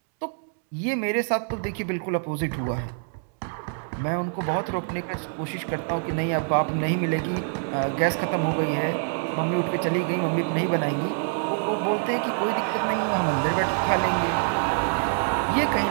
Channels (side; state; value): left; silent; 61 dB below the other